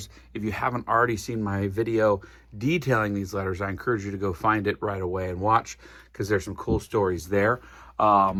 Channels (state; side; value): identical; both; correlation 1.00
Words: If you haven't already seen my video detailing these letters, I encourage you to go find it right away and watch, because there's some cool stories there.